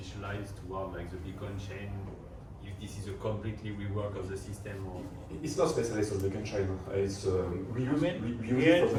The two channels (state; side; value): identical; both; correlation 1.00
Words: toward like the Beacon chain, if this is a completely rework of the system, or it's not specialized on the Beacon chain. It's we use it for